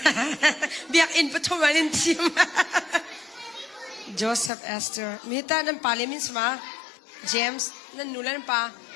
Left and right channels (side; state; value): right; drops out; at 4.5 s